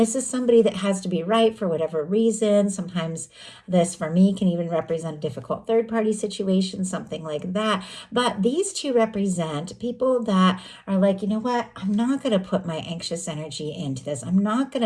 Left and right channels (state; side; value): identical; both; correlation 1.00